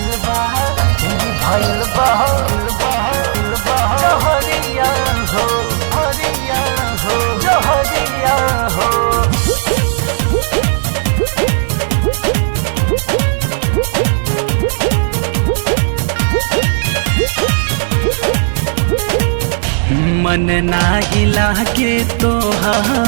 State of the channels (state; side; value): silent; left; digital silence